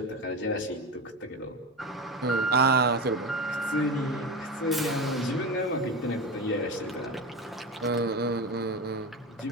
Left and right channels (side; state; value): both; normal; correlation 0.22